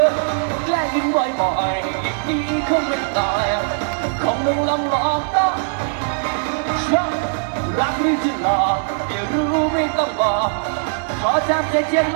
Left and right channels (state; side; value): silent; left; digital silence